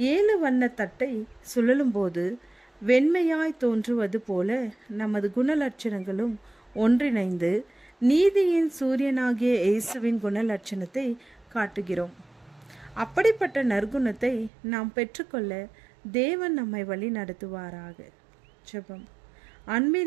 7 வண்ண தட்டை சுழலும் போது வெண்மையாய் தோன்றுவது போல நமது குணலட்சணங்களும் ஒன்றிணைந்து நீதியின் சூரியனாகிய இயேசுவின் குணலட்சணத்தை காட்டுகிறோம். அப்படிப்பட்ட நற்குணத்தை நாம் பெற்றுக்கொள்ள தேவன் நம்மை வழி நடத்துவாராக. ஜெபம்.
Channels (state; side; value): drops out; left; at 14.5 s